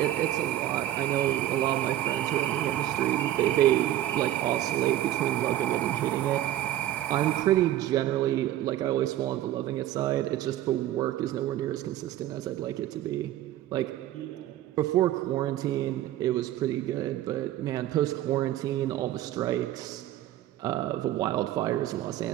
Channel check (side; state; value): left; quieter; 13.3 dB